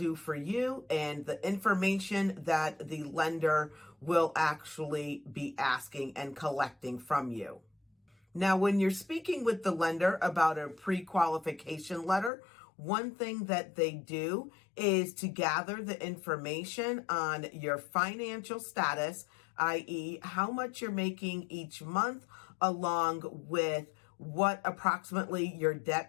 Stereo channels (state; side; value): drops out; right; at 12.3 s